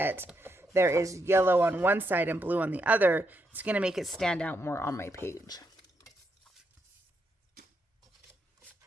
there is yellow on one side and blue on the other, it's going to make it stand out more on my page.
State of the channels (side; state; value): both; normal; correlation 0.80